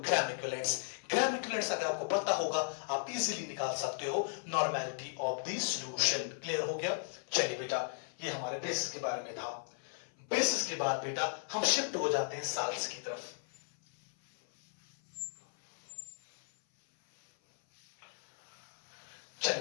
इक्विवेलेंट्स। ग्राम इक्विवेलेंट्स अगर आपको पता होगा आप इजीली निकाल सकते हो normality of the solution. Clear हो गया? चलिए बेटा ये हमारे बेसिस के बारे में था। बेसिस के बाद बेटा हम शिफ्ट हो जाते हैं साल्ट्स की तरफ।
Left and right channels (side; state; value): right; silent; 54 dB below the other